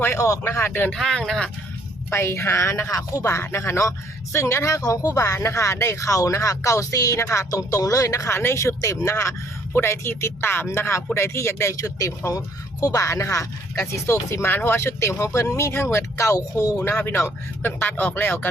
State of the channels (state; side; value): normal; both; correlation 0.64